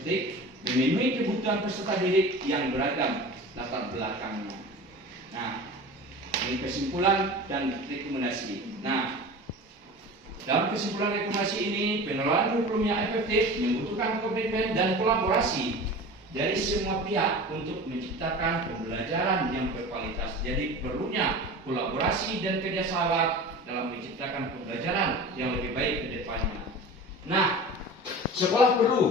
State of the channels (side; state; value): both; normal; correlation 0.35